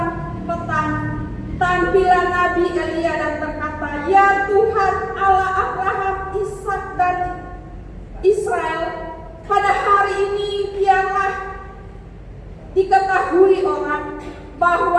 petang, tampilan Nabi Elia dan berkata, ya Tuhan Allah Abraham, Ishak dan Israel, pada hari ini biarlah diketahui orang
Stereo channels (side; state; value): both; identical; correlation 1.00